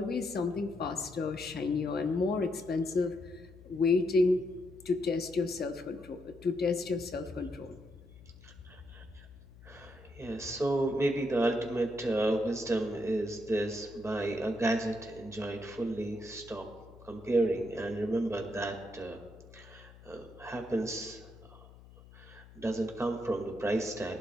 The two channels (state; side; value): noise; left; hum, 20 dB below the sound